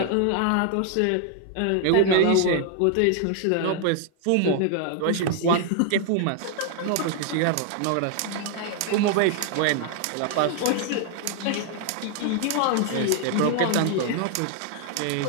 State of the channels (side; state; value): both; different; correlation 0.00